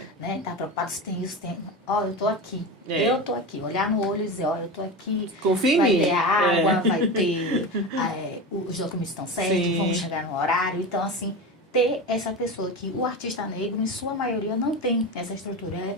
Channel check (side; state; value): both; normal; correlation 0.24